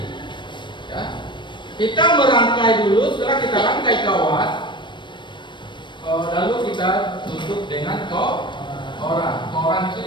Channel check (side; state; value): right; late; 0.22 ms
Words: Ya. Kita merangkai dulu, setelah kita rangkai kawat, lalu kita tutup dengan koran. Koran itu